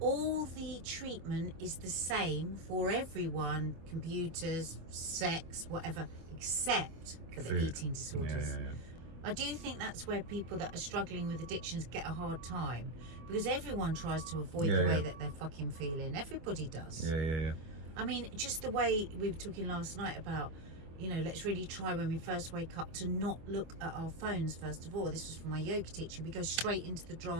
the treatment is the same for everyone: computers, sex, whatever, except for the eating disorders. Yeah. I do think that's where people that are struggling with addictions get a hard time, because everyone tries to avoid the way that they're fucking feeling. Everybody does. Yeah. I mean, just the way we were talking last night about, you know, let's really try when we first wake up to not look at our phones first of all. This was from my yoga teacher. We go straight into the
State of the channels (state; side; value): late; left; 25 ms